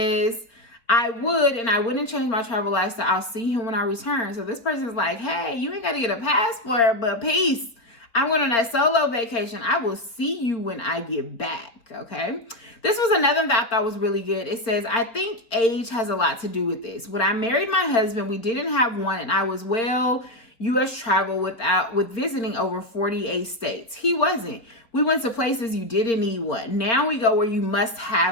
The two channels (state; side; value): late; right; 4.2 ms